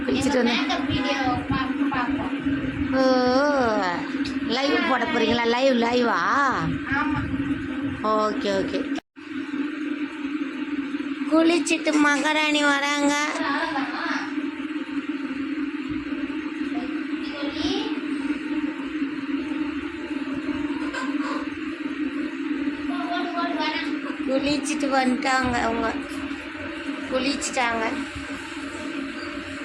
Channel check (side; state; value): both; identical; correlation 1.00